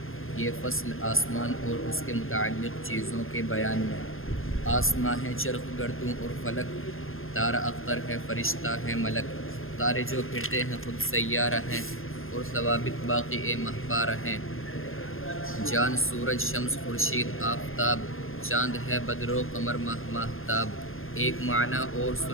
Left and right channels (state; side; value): late; right; 0.60 ms